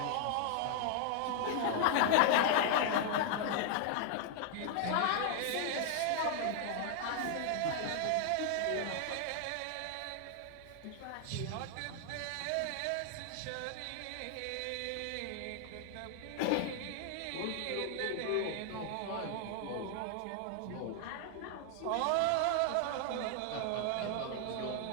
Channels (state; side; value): different; both; correlation 0.00